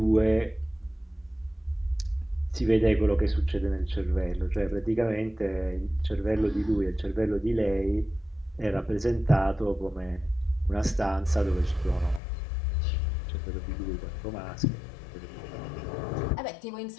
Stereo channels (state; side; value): drops out; right; at 12.2 s